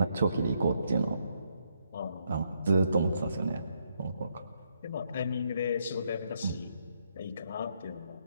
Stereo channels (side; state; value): both; inverted; correlation -0.75